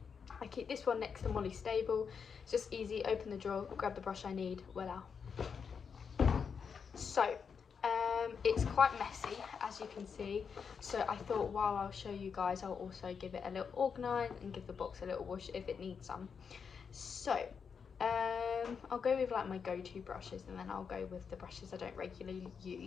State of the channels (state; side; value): quieter; right; 6.3 dB